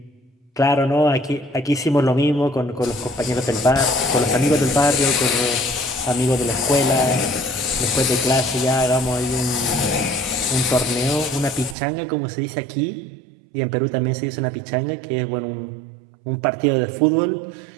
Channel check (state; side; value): drops out; left; at 11.8 s